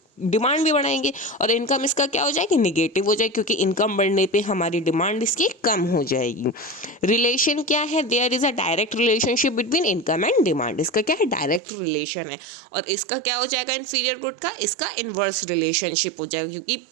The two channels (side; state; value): left; drops out; at 11.6 s